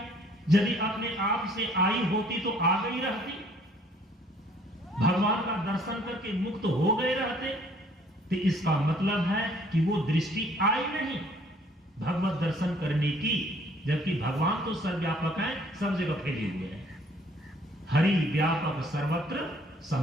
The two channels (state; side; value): normal; both; correlation 0.59